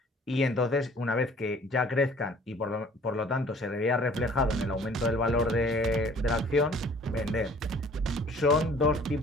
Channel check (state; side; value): normal; both; correlation 0.53